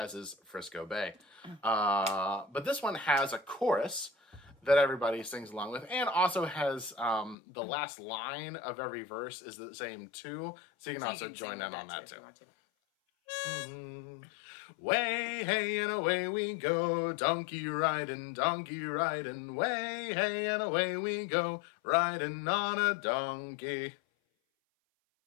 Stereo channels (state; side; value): drops out; right; at 7.4 s